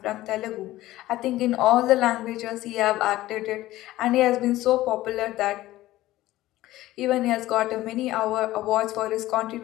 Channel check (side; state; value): right; quieter; 16.2 dB